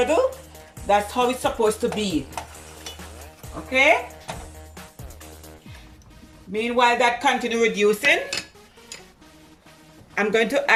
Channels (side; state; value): both; identical; correlation 1.00